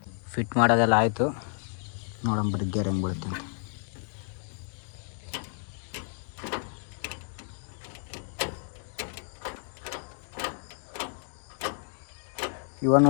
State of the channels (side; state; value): right; silent; 55 dB below the other